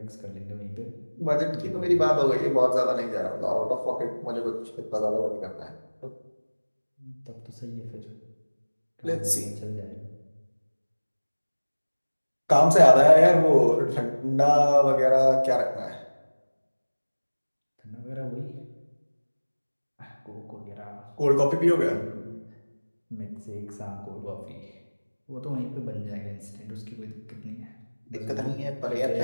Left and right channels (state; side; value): inverted; both; correlation -1.00